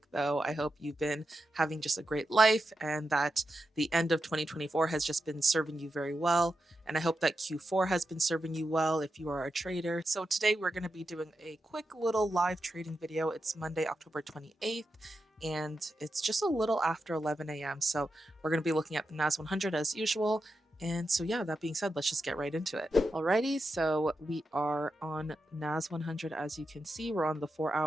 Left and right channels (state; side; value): normal; both; correlation 0.88